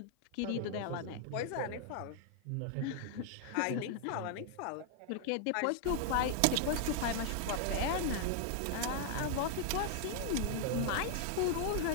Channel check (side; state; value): both; different; correlation 0.00